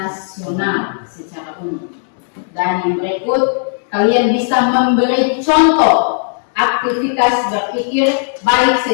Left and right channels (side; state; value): right; silent; digital silence